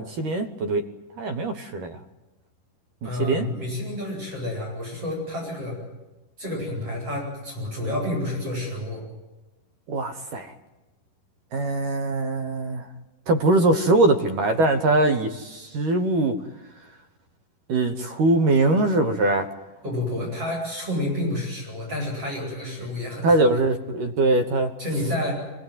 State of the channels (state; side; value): late; left; 11 ms